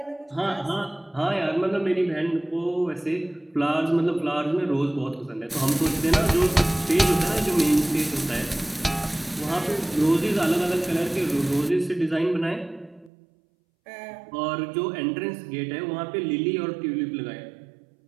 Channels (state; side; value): drops out; left; at 13.1 s